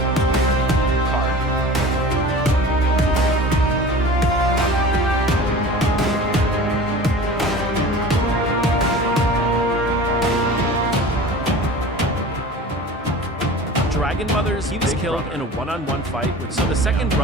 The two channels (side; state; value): both; normal; correlation 0.38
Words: Dragon Mothers, he was killed in a one-on-one fight with, so the second